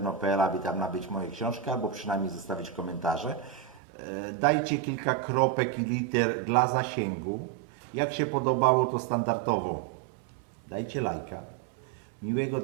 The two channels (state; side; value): drops out; left; at 3.8 s